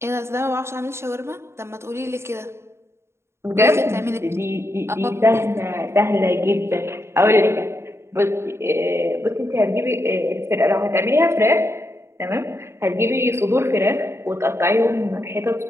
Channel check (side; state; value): left; late; 0.13 ms